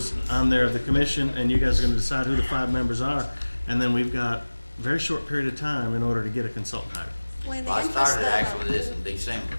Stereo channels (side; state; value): both; inverted; correlation -1.00